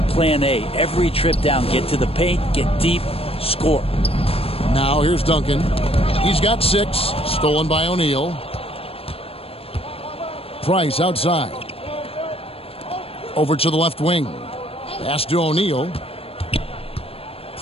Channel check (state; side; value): late; right; 0.28 ms